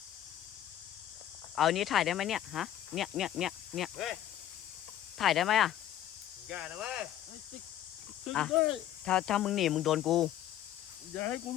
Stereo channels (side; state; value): right; quieter; 11.9 dB